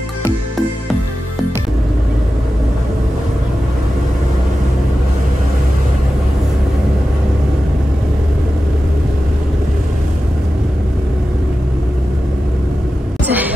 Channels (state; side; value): normal; both; correlation 0.93